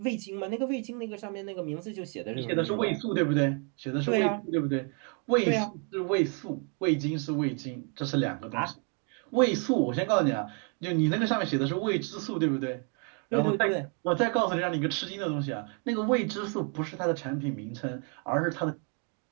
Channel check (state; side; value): quieter; left; 38.9 dB